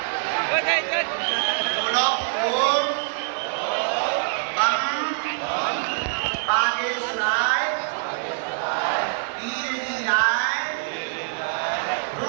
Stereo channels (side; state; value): left; silent; 59 dB below the other